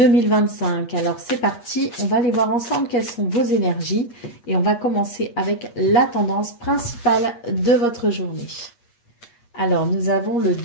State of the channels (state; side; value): late; right; 8.4 ms